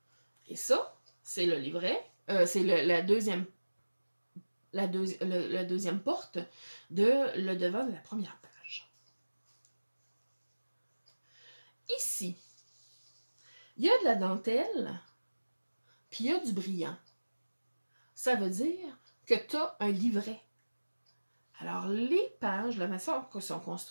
Et ça, c'est le livret. C'est la deuxième porte de le devant de la première page. Ici, il y a de la dentelle, puis il y a du brillant. Ça veut dire que tu as un livret. Alors, les pages, la façon que sont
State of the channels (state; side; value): inverted; both; correlation -1.00